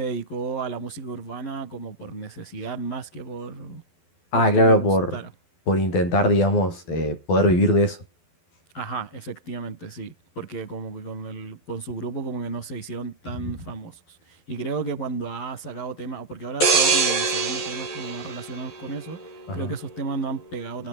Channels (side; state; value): right; late; 12 ms